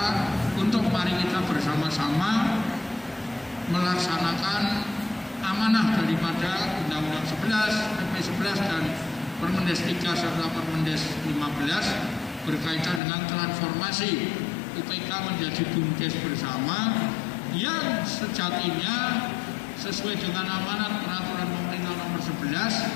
untuk mari kita bersama-sama melaksanakan amanah daripada Undang-Undang 11, PP 11 dan Permendes 3 serta Permendes 15 berkaitan dengan transformasi UPK menjadi BUMDes bersama yang sejatinya sesuai dengan amanat peraturan pemerintah nomor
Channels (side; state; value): right; drops out; at 13.0 s